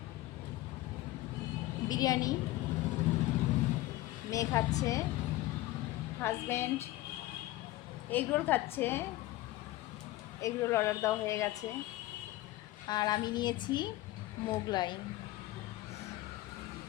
বিরিয়ানি। মেয়ে খাচ্ছে, হাজব্যান্ড এগরোল খাচ্ছে। এগরোল অর্ডার দেওয়া হয়ে গেছে। আর আমি নিয়েছি মোগলাই।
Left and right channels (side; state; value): right; quieter; 17.2 dB